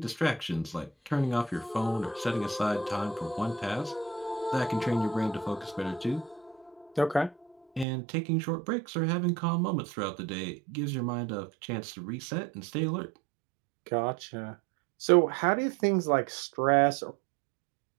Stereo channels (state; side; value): drops out; left; at 7.9 s